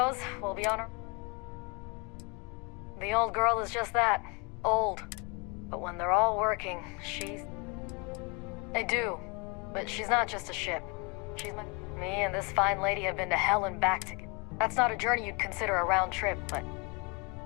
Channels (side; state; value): right; quieter; 30.8 dB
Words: we'll be on our... The old girl is just that. Old. But when they're all working, she's... I do. But she's not just a ship. She's my... Me and this fine lady have been to hell and back together. That's not a journey you'd consider a round trip, but...